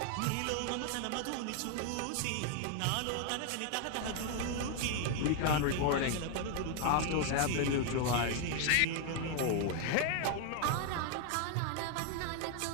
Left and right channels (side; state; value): both; different; correlation 0.00